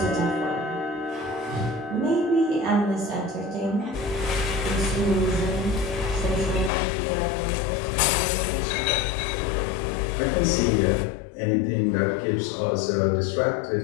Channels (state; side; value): drops out; right; at 6.7 s